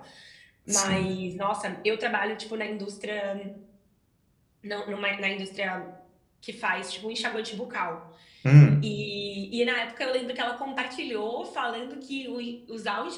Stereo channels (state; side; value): identical; both; correlation 1.00